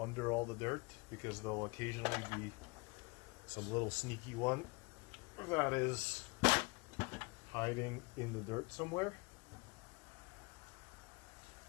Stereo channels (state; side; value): quieter; right; 27.5 dB